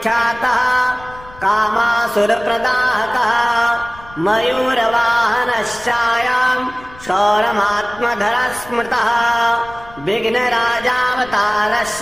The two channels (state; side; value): noise; left; rumble, 20 dB below the sound